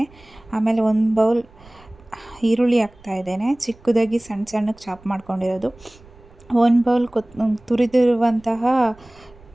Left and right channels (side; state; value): right; noise; rumble, 25 dB below the sound